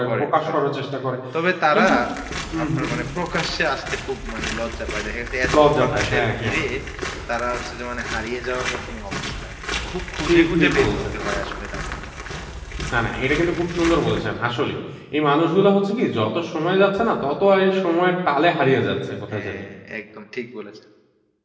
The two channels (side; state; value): both; identical; correlation 1.00